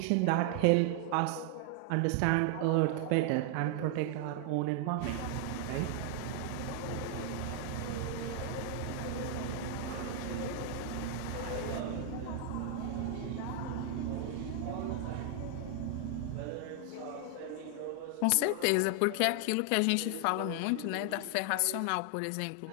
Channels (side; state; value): both; different; correlation 0.00